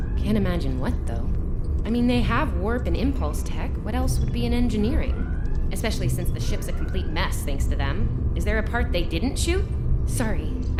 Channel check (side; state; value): both; identical; correlation 1.00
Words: Can't imagine what, though. I mean, they have warp and impulse tech. What else would be in engineering? Especially since the ship's a complete mess thanks to them. Is there a part they didn't shoot? Sorry,